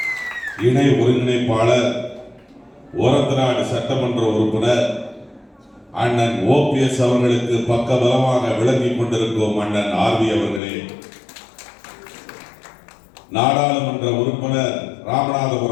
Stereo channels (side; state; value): right; drops out; at 10.6 s